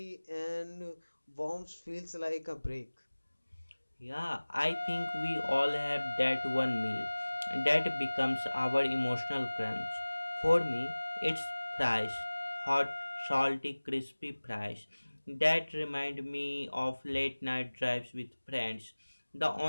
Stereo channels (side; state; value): both; inverted; correlation -1.00